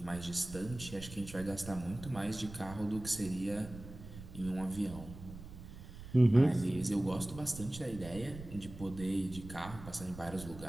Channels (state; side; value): noise; right; rumble, 14 dB below the sound